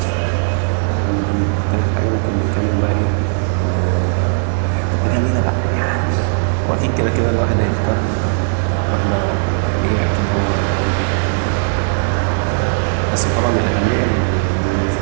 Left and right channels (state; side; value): silent; left; digital silence